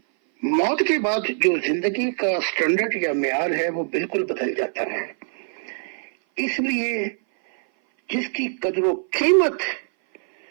موت کے بعد جو زندگی کا سٹینڈرڈ یا معیار ہے وہ بالکل بدل جاتا ہے۔ اس لیے جس کی قدر و قیمت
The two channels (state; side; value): silent; left; 59 dB below the other